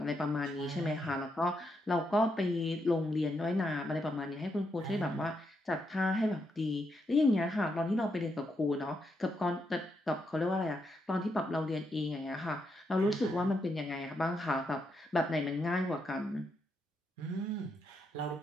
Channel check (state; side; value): normal; both; correlation 0.80